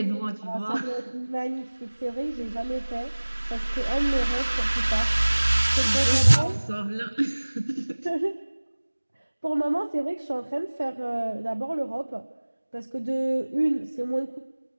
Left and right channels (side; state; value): both; inverted; correlation -1.00